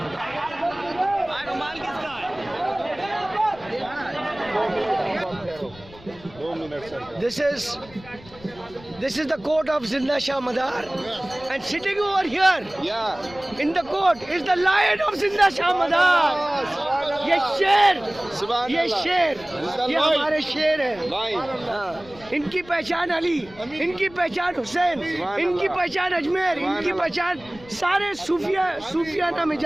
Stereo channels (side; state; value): left; noise; rumble, 21 dB below the sound